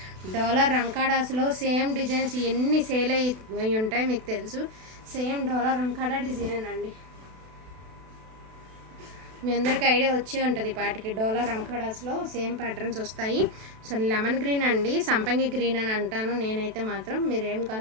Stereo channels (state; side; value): late; left; 32 ms